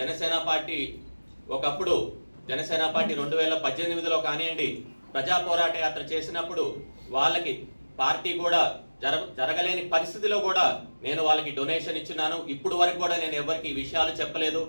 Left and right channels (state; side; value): inverted; both; correlation -1.00